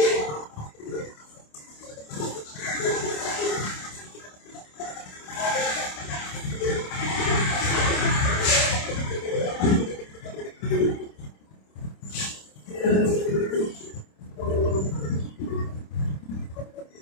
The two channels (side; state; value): right; late; 27 ms